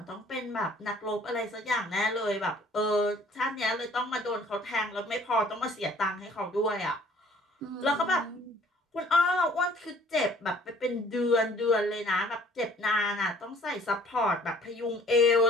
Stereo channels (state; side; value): normal; both; correlation 0.55